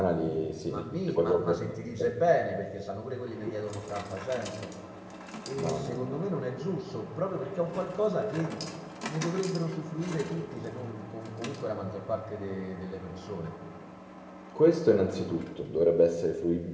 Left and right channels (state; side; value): identical; both; correlation 1.00